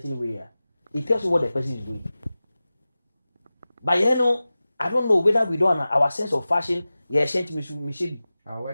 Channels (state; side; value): inverted; both; correlation -0.96